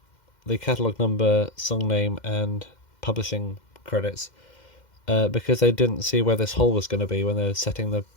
the catalogue number, song name and publishing credits, because they didn't see where this hole was going to be when they were setting the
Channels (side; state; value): right; late; 2.1 ms